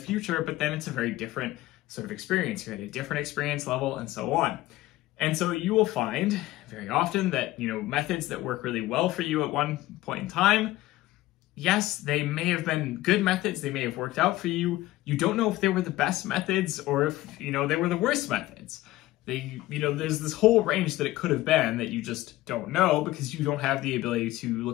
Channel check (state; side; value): quieter; right; 17.0 dB